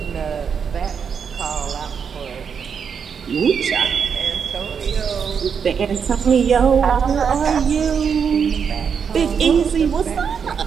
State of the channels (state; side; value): quieter; left; 6.7 dB